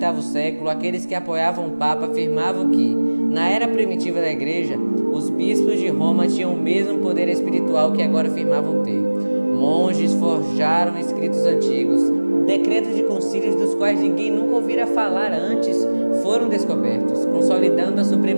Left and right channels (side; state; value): both; inverted; correlation -1.00